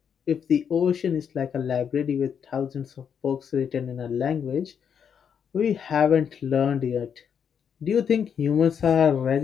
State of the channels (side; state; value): right; quieter; 7.6 dB